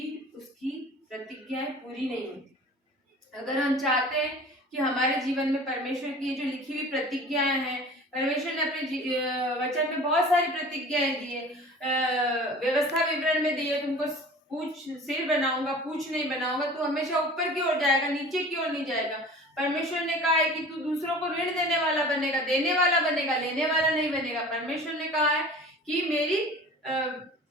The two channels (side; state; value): both; normal; correlation 0.42